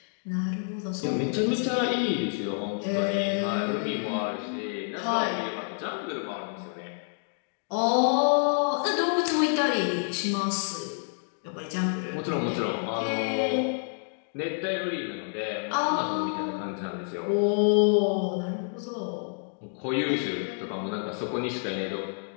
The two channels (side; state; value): right; silent; 59 dB below the other